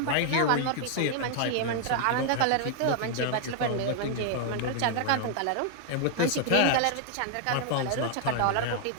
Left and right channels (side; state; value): both; different; correlation 0.00